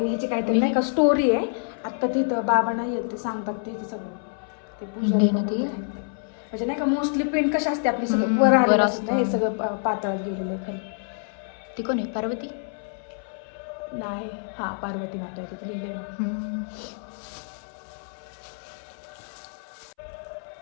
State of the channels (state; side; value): silent; right; 60 dB below the other